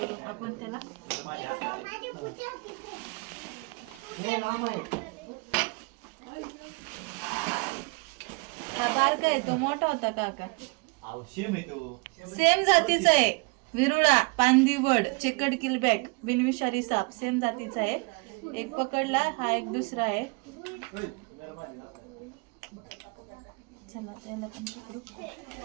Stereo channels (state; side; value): quieter; left; 30.0 dB